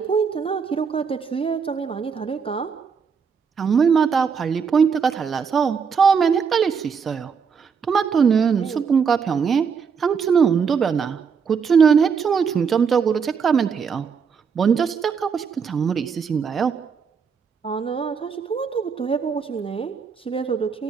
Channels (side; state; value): left; quieter; 6.2 dB